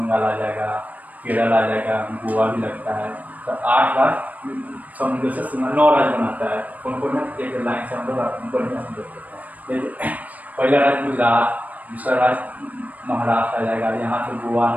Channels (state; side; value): late; left; 0.074 ms